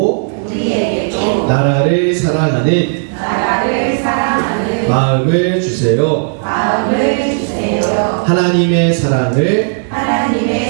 나라를 사랑하는 마음을 주세요. 하나님의 사랑을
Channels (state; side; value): silent; left; digital silence